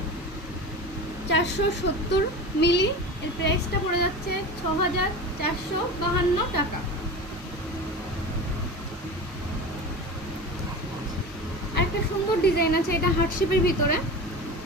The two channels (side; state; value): both; normal; correlation 0.30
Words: 470 মিলি, এর প্রাইসটা পড়ে যাচ্ছে 6,452 টাকা। একটা সুন্দর ডিজাইন আছে, এটা হার্ট শেপের ভিতরে